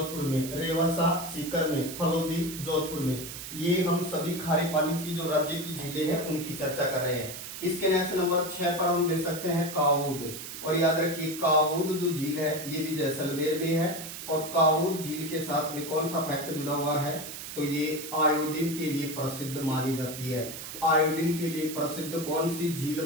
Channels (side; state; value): right; noise; hiss, 9 dB below the sound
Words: में, रेवासा सीकर में, फलोदी जोधपुर में। ये हम सभी खारे पानी की जो राज्य की झीलें हैं उनकी चर्चा कर रहे हैं। इसके नेक्स्ट नंबर 6 पर हम दे सकते हैं कावूद, और याद रखिए कावूद जो झील है ये भी जैसलमेर में है, और कावूद झील के साथ में कौन सा फैक्ट जुड़ा हुआ है, तो ये आयोडीन के लिए प्रसिद्ध मानी जाती है। आयोडीन के लिए प्रसिद्ध कौन सी झील